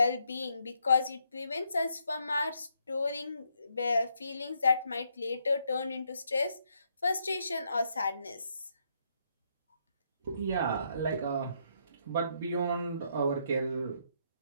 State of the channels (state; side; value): inverted; both; correlation -0.75